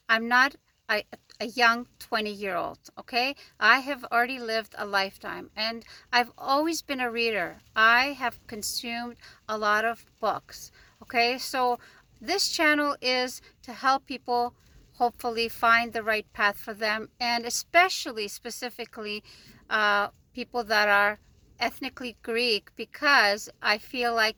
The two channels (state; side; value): identical; both; correlation 1.00